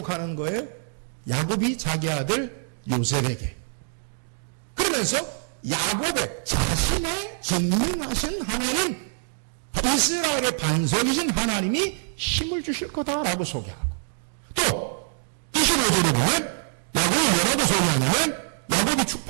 거예요? 야곱이 자기 아들 요셉에게. 그러면서 야곱의 자신의 전능하신 하나님, 이스라엘의 반석이신 하나님이 힘을 주실 거다라고 소개하고, 또 25절에 보면 야곱이 뭐라고 소개하냐면 야곱이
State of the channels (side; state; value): left; silent; digital silence